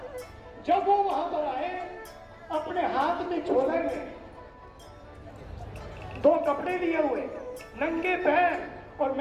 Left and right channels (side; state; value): both; identical; correlation 1.00